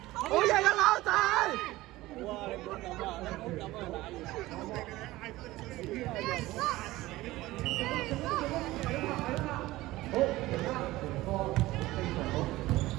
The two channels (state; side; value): quieter; left; 17.9 dB